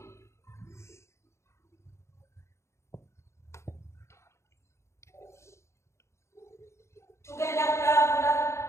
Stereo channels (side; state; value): right; late; 0.13 ms